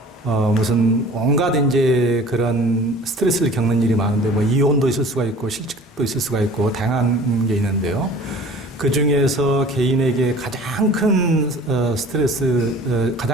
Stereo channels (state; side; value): normal; both; correlation 0.46